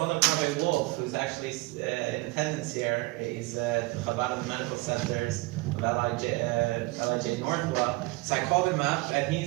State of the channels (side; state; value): left; quieter; 22.6 dB